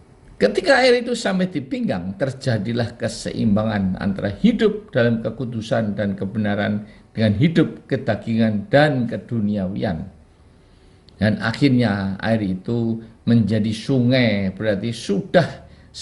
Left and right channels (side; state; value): both; identical; correlation 1.00